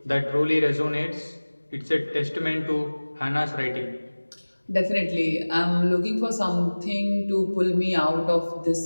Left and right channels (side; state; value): both; inverted; correlation -1.00